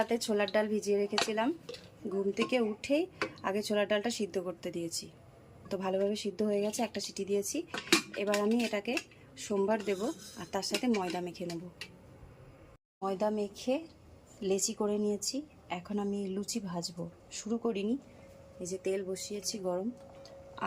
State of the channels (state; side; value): identical; both; correlation 1.00